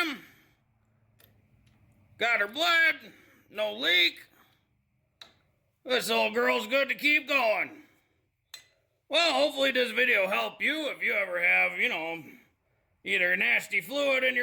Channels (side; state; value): both; identical; correlation 1.00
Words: Got her bled, no leak. This old girl's good to keep going. Well, hopefully this video helped you if you ever have, either nasty fluid in